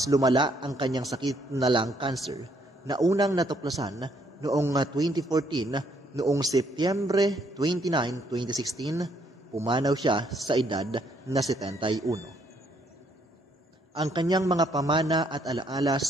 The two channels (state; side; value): normal; both; correlation 0.69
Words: lumala ang kanyang sakit na lung cancer na unang natuklasan noong 2014. Noong Setyembre 29, 2016, pumanaw siya sa edad na 71. Ang kanyang mga pamana at alaala